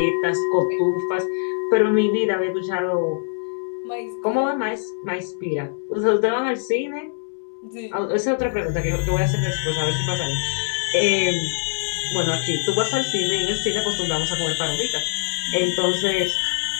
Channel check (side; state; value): right; silent; digital silence